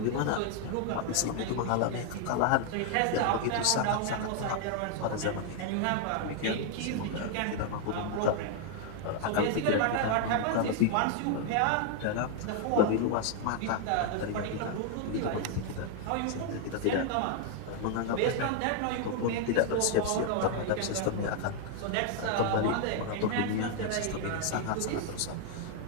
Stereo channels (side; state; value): both; different; correlation 0.00